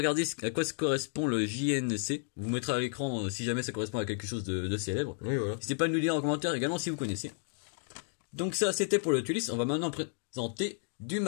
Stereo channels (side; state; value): right; silent; digital silence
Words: à quoi correspond le JNC. Vous mettrez à l'écran si jamais ça correspond à quelque chose de célèbre. Oui, voilà. N'hésitez pas à nous le dire en commentaire également si vous connaissez. Donc ça, c'était pour le Tulis. On va maintenant présenter du